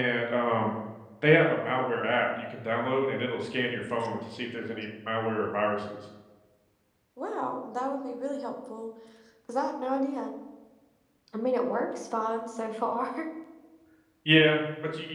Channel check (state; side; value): identical; both; correlation 1.00